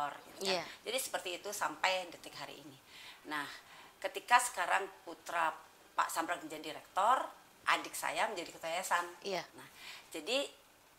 gitu kan. Jadi seperti itu sampai detik hari ini. Nah, ketika sekarang putra Pak Sambrek menjadi rektor, adik saya menjadi ketua yayasan. Nah, jadi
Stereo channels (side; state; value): both; identical; correlation 1.00